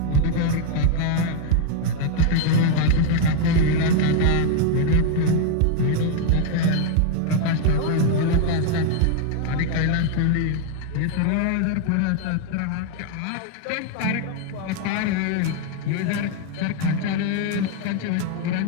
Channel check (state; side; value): different; both; correlation 0.00